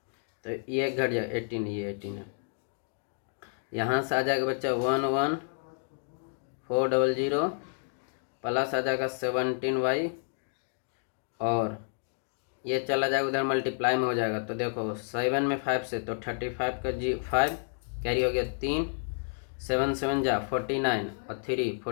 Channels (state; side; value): silent; right; digital silence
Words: तो ये घट जाएगा 18, ये 18 है। यहाँ से आ जाएगा बच्चा 11400 प्लस आ जाएगा 17y और ये चला जाएगा उधर मल्टीप्लाई में हो जाएगा। तो देखो 7 में 5 से तो 35 का 5 कैरी हो गया 3, 7 7 जा 49 और 3